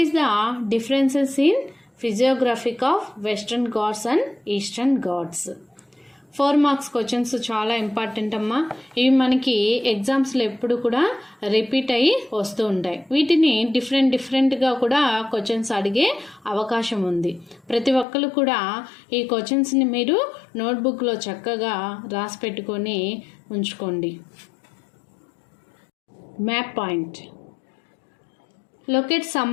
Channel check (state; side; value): drops out; right; at 18.1 s